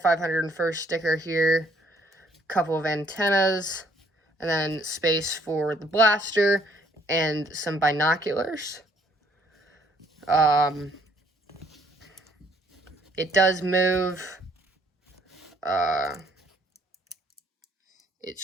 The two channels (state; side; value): normal; both; correlation 0.65